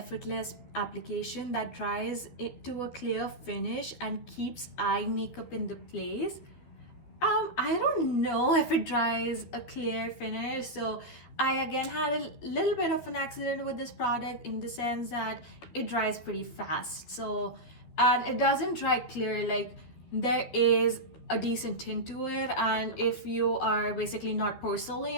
application that dries it to a clear finish and keeps eye makeup in the place. I don't know if it dries a clear finish. So I again had a little bit of an accident with this product in the sense that it dries pretty fast. So, and it doesn't dry clear, like there is a decent tint to it. And if you are basically not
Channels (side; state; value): right; late; 13 ms